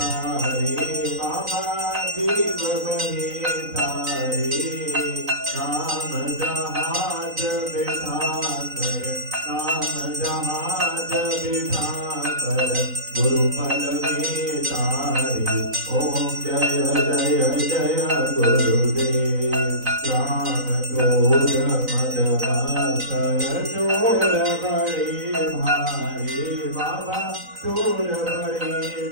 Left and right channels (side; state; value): left; late; 4.0 ms